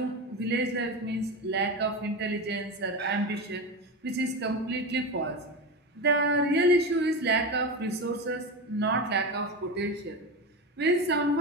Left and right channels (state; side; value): normal; both; correlation 0.20